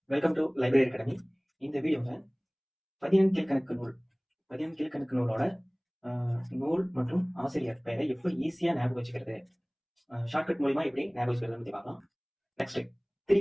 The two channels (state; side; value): identical; both; correlation 1.00